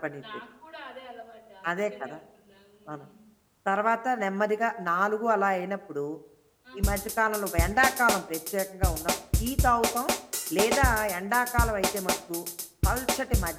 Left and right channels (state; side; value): identical; both; correlation 1.00